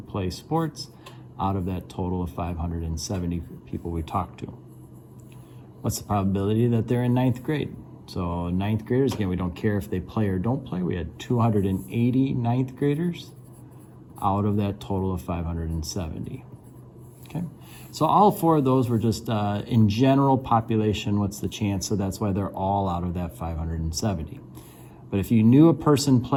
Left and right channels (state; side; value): identical; both; correlation 1.00